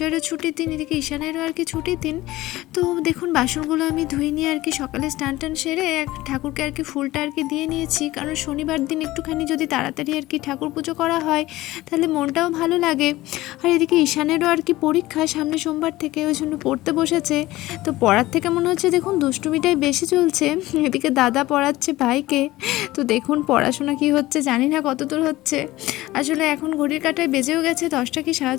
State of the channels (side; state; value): right; quieter; 17.6 dB